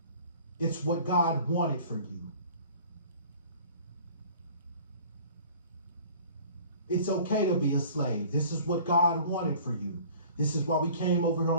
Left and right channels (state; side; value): inverted; both; correlation -0.48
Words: It's what God wanted for you. It's okay to be a slave. This is what God wanted for you. This is why we came over here